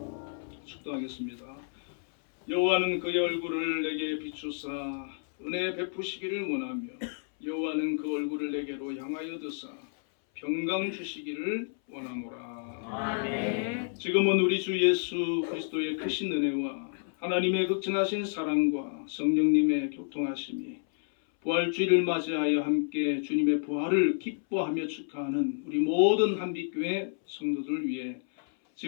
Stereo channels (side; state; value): right; silent; 58 dB below the other